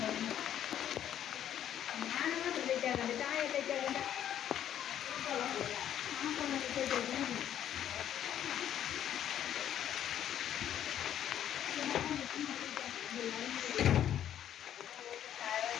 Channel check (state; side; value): quieter; right; 10.5 dB